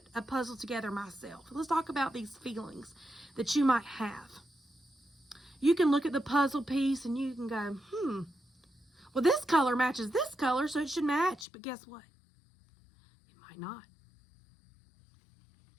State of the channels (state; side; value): drops out; right; at 11.5 s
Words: a puzzle together myself. Let's talk about these feelings that you might have. You can look at the puzzle piece and you can go, well, this color matches this color, so it should match. But guess what? It might not.